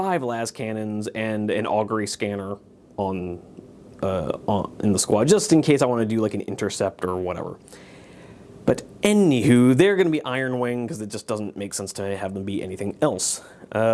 las cannons and an augury scanner in the squad, just in case I want to do like an intercept or whatever. But anywho, they're going to be Iron Wing because it just doesn't make sense to have them be anything else.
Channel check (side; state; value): both; identical; correlation 1.00